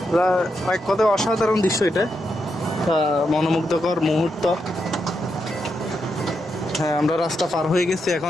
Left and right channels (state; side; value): normal; both; correlation 0.83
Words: এক কথায় অসাধারণ দৃশ্য এটা, মনোমুগ্ধকর মুহূর্ত। হ্যাঁ আমরা রাস্তা পার হয়ে গেছি,